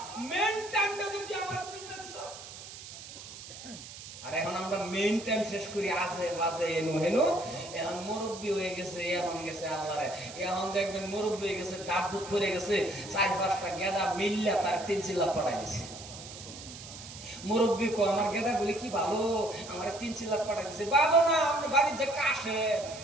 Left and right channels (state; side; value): noise; right; hiss, 13 dB below the sound